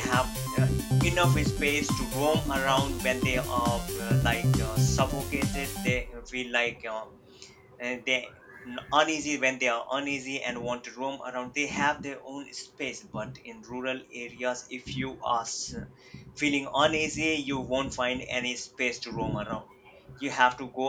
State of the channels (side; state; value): both; identical; correlation 1.00